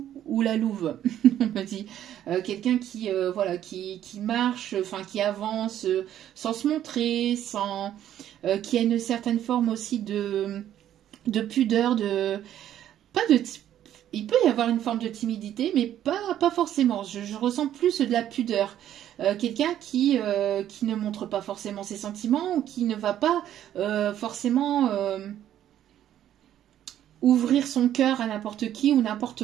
ou la louve, on me dit. Quelqu'un qui marche, enfin qui avance sans se montrer, qui a une certaine forme aussi de pudeur, il peut y avoir une forme de timidité, mais pas forcément. Je ressens plus de la pudeur. Quelqu'un qui ne montre pas forcément ses sentiments ou qui ne va pas forcément ouvrir son cœur à n'importe qui ou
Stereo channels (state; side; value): quieter; left; 11.3 dB